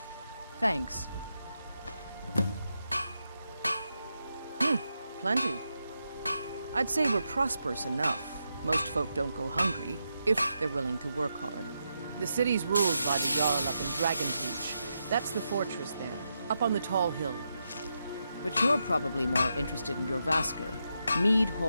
Thanks. Plenty. I'd say we're prosperous enough. Most folk don't go hungry, if they're willing to work hard. The city's ruled by the Jarl up in Dragonreach. That's the fortress there, up on the tall hill. But you're probably more interested in your Vasker, Mead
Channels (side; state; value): both; inverted; correlation -0.85